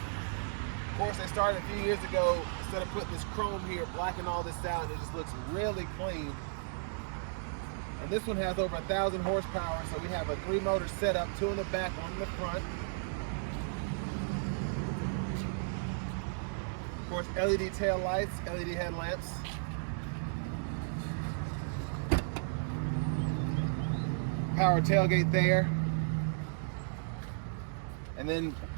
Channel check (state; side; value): silent; left; digital silence